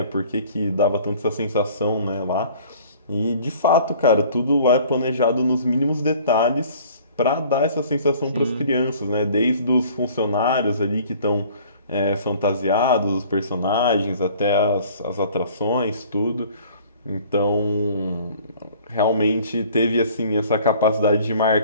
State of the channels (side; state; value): both; inverted; correlation -0.51